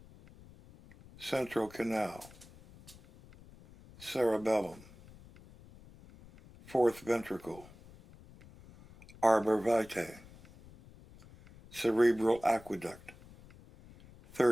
central canal, cerebellum, fourth ventricle, arbor vitae, cerebral aqueduct,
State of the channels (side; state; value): left; noise; rumble, 22 dB below the sound